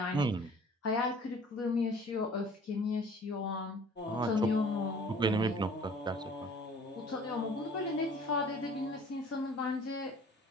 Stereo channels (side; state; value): both; normal; correlation 0.50